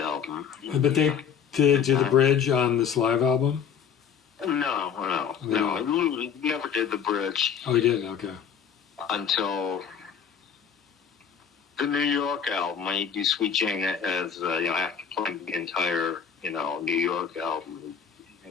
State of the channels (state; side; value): quieter; right; 7.5 dB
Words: But they did do the bridge on this live album? No. Lou never did the bridge. Oh, he didn't? Okay. Until the New York album. I do Sweet Jane as, after playing the entire, New York album,